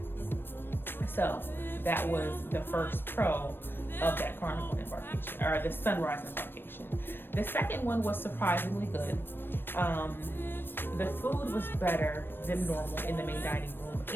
So that was the first pro of that Carnival embarkation, or the sunrise embarkation. The second one was surprisingly good. The food was better than normal in the main dining room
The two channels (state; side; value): late; right; 0.098 ms